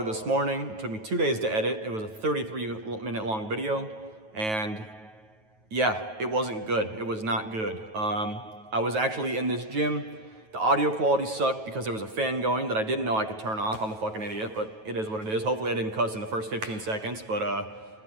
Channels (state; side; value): late; left; 9.3 ms